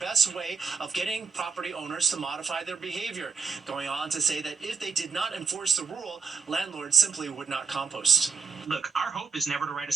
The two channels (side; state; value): left; quieter; 5.5 dB